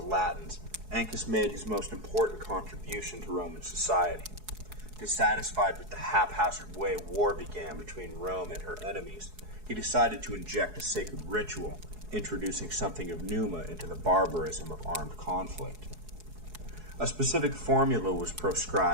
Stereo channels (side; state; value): left; late; 4.7 ms